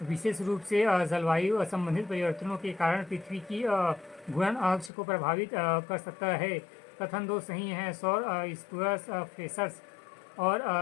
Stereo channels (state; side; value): drops out; right; at 4.9 s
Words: विशेष रूप से जलवायु संबंधित परिवर्तनों के कारण पृथ्वी की घूर्णन अक्ष को प्रभावित कर सकता है। कथन 2 सही है। सौर स्फुरस फ्लेशर्स और